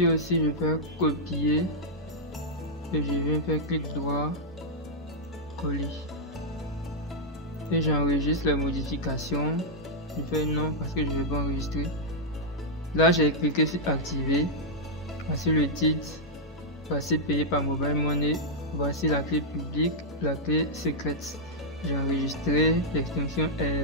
aussi, je fais copier. Et je viens faire clic droit, coller. Et j'enregistre la modification. Je fais non parce que je ne vais pas enregistrer. Là, j'ai cliqué sur activer. Voici le titre. Voici payé par Mobile Money. Voici la clé publique, la clé secrète. J'ai enregistré. L'extension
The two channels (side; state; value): both; normal; correlation -0.06